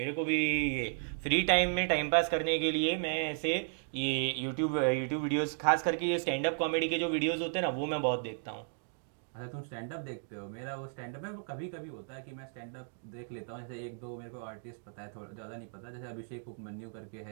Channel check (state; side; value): silent; left; digital silence